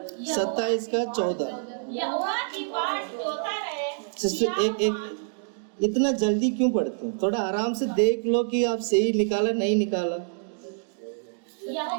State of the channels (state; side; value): silent; left; digital silence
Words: 27 का 14। यहोवा की बाट जोता रहे। सिस्टर एक इतना जल्दी क्यों पढ़ते हैं? थोड़ा आराम से देख लो कि आप सही निकाला नहीं निकाला।